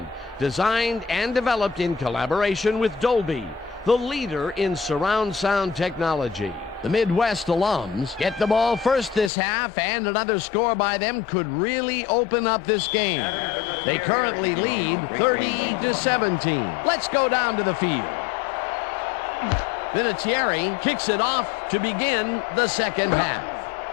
designed and developed in collaboration with Dolby, the leader in surround sound technology. The Midwest alums get the ball first this half, and another score by them could really open up this game. They currently lead 30-17. Let's go down to the field. Vinatieri kicks it off to begin the second half.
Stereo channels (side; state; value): right; drops out; at 9.3 s